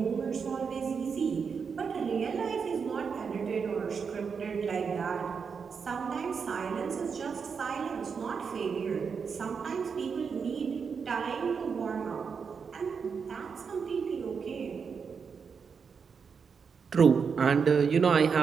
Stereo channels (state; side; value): quieter; left; 6.0 dB